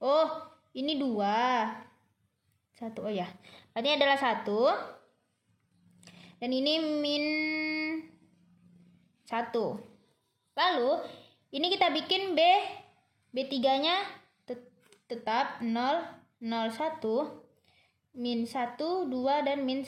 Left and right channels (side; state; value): both; identical; correlation 1.00